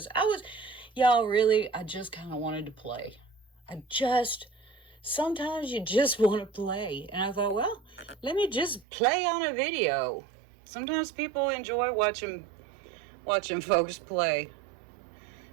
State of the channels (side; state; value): left; drops out; at 8.8 s